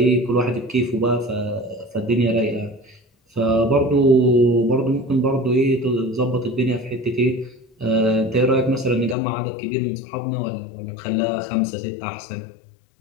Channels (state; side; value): drops out; right; at 9.2 s